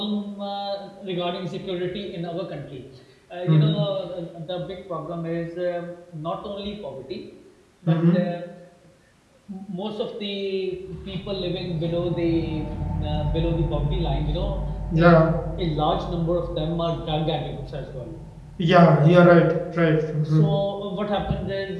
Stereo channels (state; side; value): identical; both; correlation 1.00